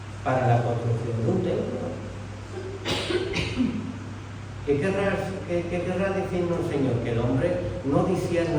para la construcción de un templo. ¿Qué querrá decirnos el Señor? Que el hombre no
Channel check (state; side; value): identical; both; correlation 1.00